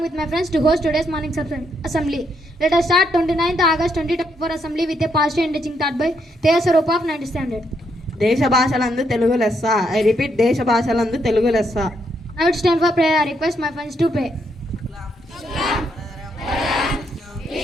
with my friends to host today's morning's assembly. Let us start 29th August 2024 assembly with a positive and teaching taught by Teja Sarup of 9th standard. దేశ భాషలందు తెలుగు లెస్స. I repeat, దేశ భాషలందు తెలుగు లెస్స. Now it's time for prayer. I request my friends to pray.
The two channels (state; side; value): normal; both; correlation 0.76